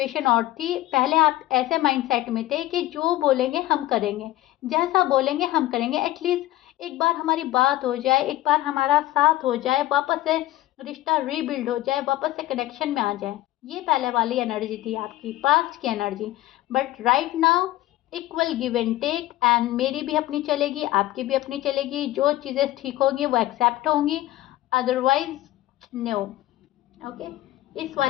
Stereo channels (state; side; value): quieter; right; 15.8 dB